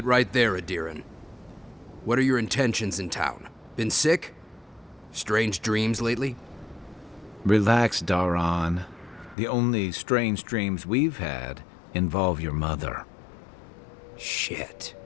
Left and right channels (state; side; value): drops out; right; at 9.3 s